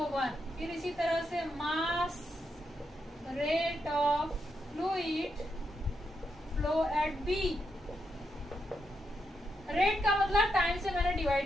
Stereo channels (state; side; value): normal; both; correlation 0.82